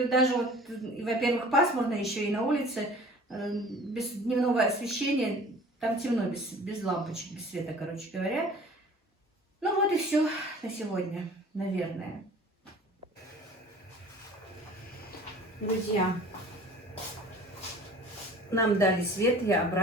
даже вот, во-первых, пасмурно еще и на улице, без дневного освещения, там темно, без лампочек, без света, короче говоря. Ну вот и все на сегодня, наверное. Друзья, нам дали свет, я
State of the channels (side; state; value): both; normal; correlation 0.46